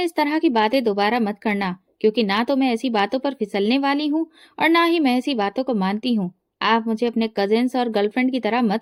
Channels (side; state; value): both; identical; correlation 1.00